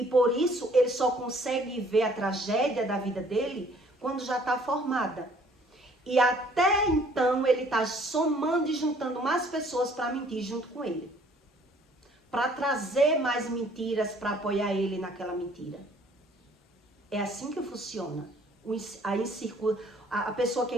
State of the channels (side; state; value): both; normal; correlation 0.59